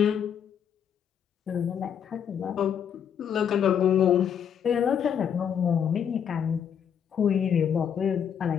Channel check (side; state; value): right; quieter; 8.2 dB